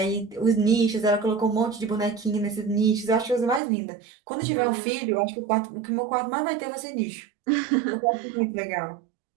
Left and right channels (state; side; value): drops out; left; at 3.6 s